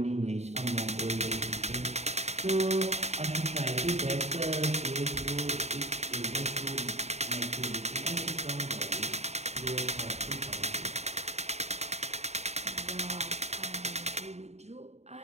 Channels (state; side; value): late; left; 0.32 ms